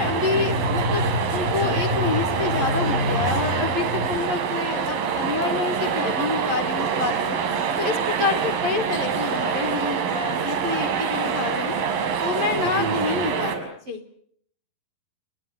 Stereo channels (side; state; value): left; late; 11 ms